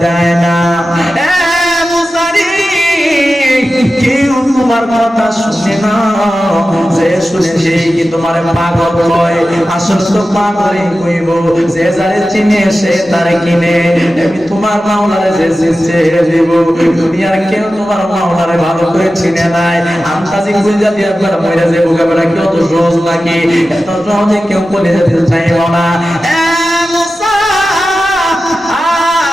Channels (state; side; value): normal; both; correlation 0.94